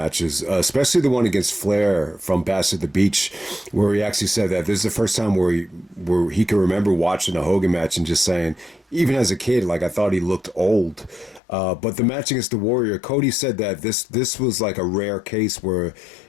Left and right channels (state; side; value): drops out; right; at 11.4 s